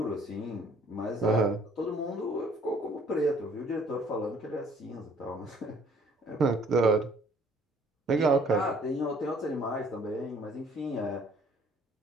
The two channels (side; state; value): both; normal; correlation 0.59